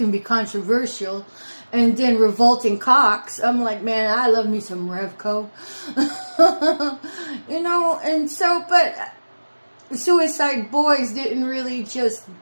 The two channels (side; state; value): both; inverted; correlation -1.00